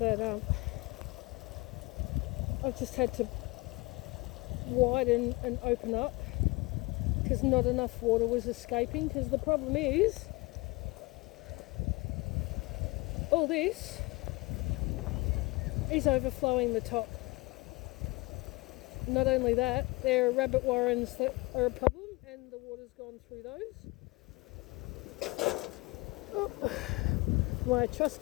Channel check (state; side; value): quieter; right; 24.6 dB